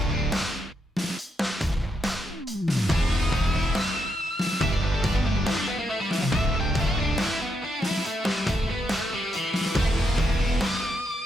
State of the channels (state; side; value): normal; both; correlation 0.80